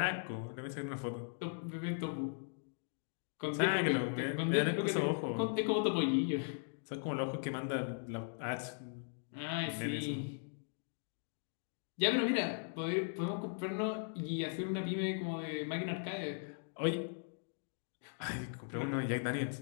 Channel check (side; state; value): right; silent; digital silence